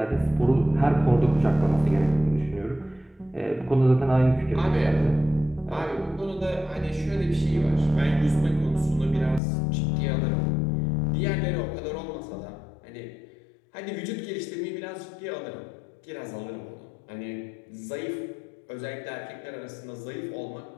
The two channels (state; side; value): drops out; right; at 9.4 s